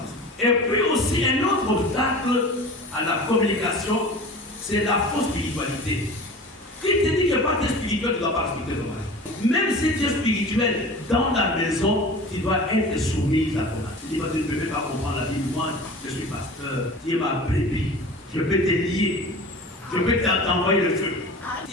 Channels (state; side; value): normal; both; correlation 0.37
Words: Et puis aussi, un autre obstacle à la communication, c'est la fausse spiritualité. Qui te dit que pas que spirituel, tu ne dois pas respecter ton mari. Même si tu es spirituel, dans la maison, tu dois être soumis à ton mari. Tu dis, tu ne peux pas comprendre la vie. Moi, je suis pasteur. Tu es ma brebis. Je peux te lier. Je peux t'envoyer le feu.